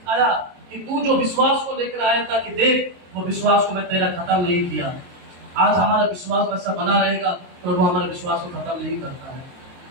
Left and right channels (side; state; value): left; late; 22 ms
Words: कि तू जो विश्वास को लेकर आया था, कि देख वो विश्वास को मैं तेरा खत्म नहीं किया। आज हमारा विश्वास वैसा बना रहेगा, प्रभु हमारे विश्वास को खत्म नहीं करता है।